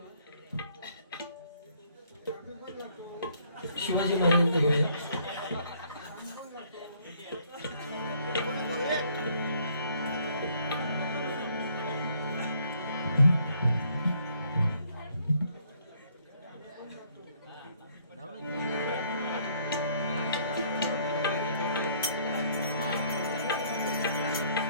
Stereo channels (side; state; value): both; inverted; correlation -0.64